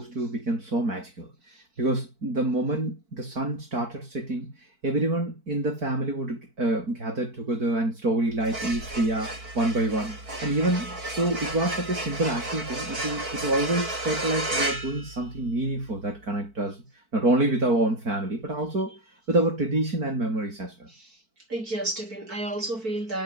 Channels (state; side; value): late; left; 4.5 ms